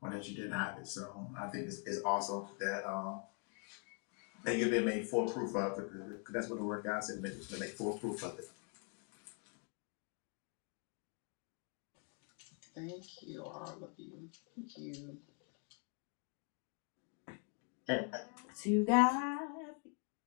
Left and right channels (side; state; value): right; quieter; 39.9 dB